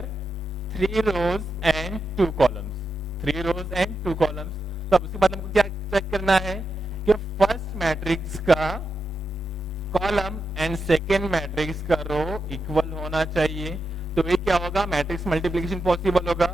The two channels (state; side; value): normal; both; correlation 0.87